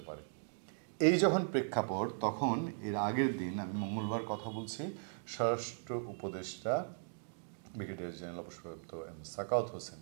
পারে। এই যখন প্রেক্ষাপট, তখন এর আগের দিন, আমি মঙ্গলবার কথা বলছি, স্বরাষ্ট্র উপদেষ্টা ব্রিগেডিয়ার জেনারেল অবসরপ্রাপ্ত সাখাওয়াত হোসেন,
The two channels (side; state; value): left; silent; digital silence